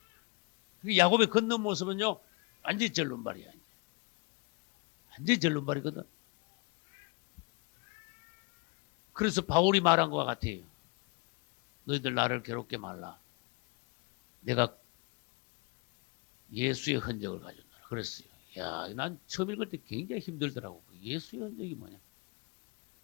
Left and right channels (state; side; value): quieter; right; 29.2 dB